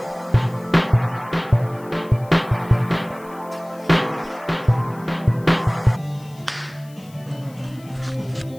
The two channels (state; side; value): noise; left; hiss, 26 dB below the sound